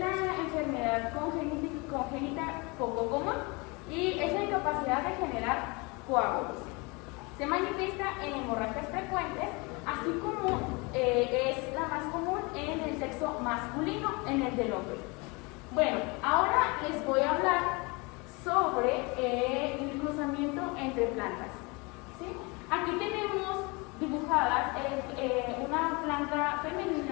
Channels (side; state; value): right; quieter; 27.9 dB